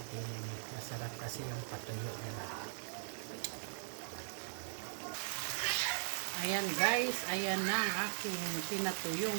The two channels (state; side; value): silent; left; 51 dB below the other